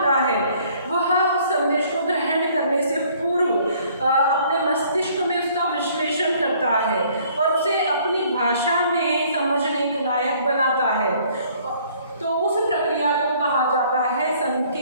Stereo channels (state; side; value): inverted; both; correlation -0.59